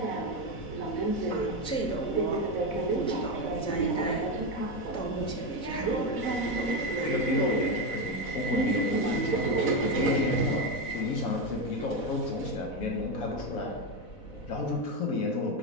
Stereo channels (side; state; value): right; late; 4.0 ms